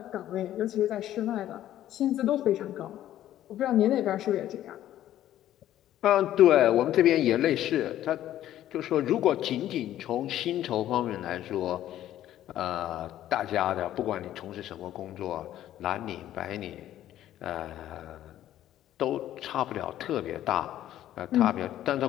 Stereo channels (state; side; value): quieter; right; 12.6 dB